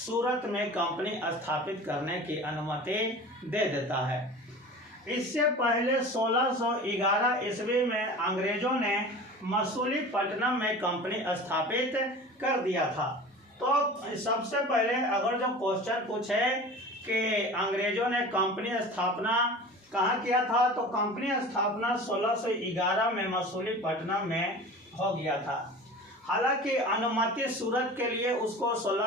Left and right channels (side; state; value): both; normal; correlation 0.37